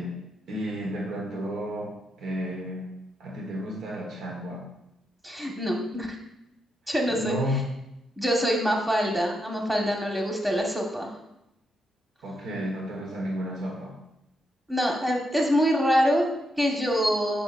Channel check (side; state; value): both; normal; correlation 0.82